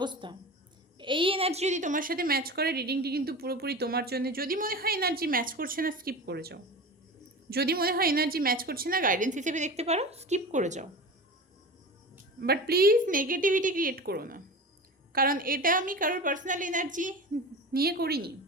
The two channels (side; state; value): both; normal; correlation 0.31